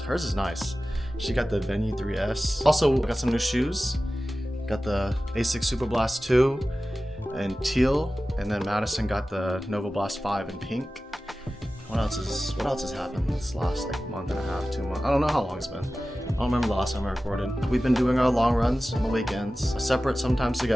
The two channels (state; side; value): normal; both; correlation 0.96